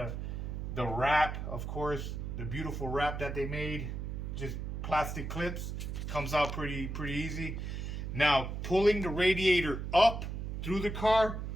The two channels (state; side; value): noise; right; hum, 5 dB below the sound